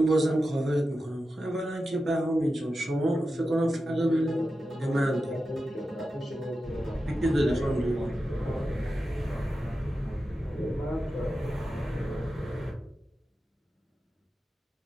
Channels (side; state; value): both; normal; correlation 0.91